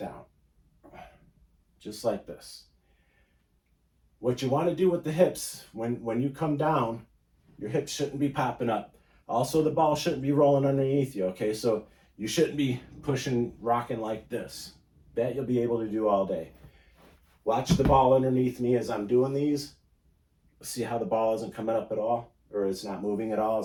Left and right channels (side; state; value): both; identical; correlation 1.00